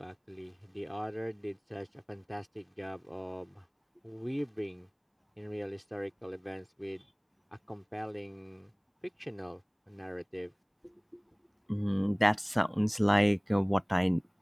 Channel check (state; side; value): identical; both; correlation 1.00